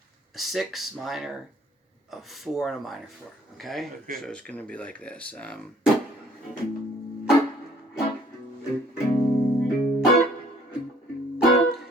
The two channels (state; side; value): normal; both; correlation 0.58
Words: a 6 minor, a 4, and a minor 4, okay? So it's going to be like this.